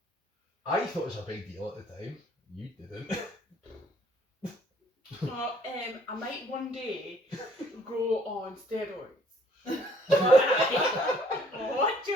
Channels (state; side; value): normal; both; correlation 0.60